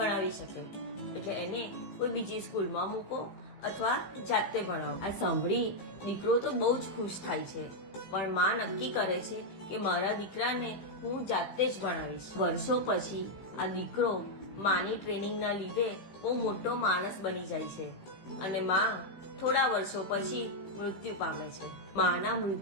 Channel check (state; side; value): late; right; 15 ms